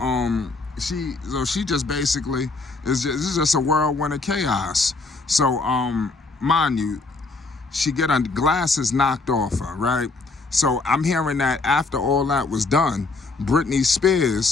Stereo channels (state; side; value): quieter; right; 3.7 dB